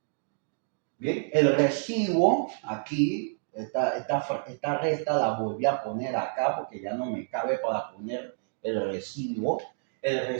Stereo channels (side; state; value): left; silent; digital silence